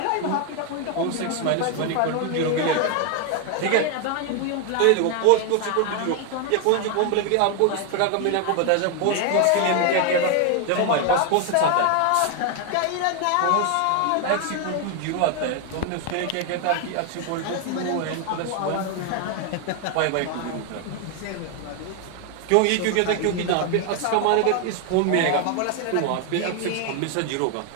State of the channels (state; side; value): different; both; correlation 0.01